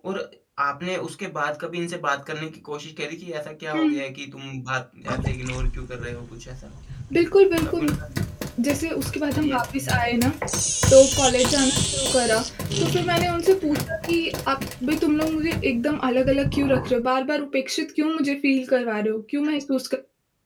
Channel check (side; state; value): both; identical; correlation 1.00